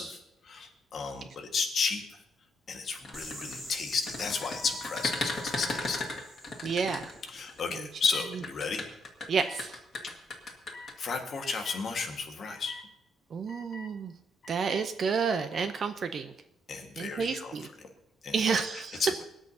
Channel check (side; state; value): both; normal; correlation 0.74